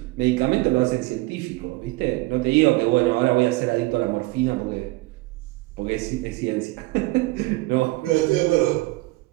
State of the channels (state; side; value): quieter; left; 21.9 dB